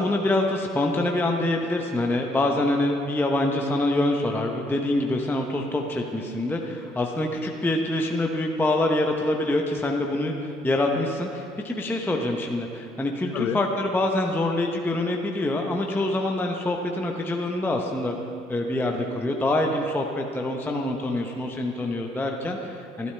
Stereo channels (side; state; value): both; normal; correlation 0.72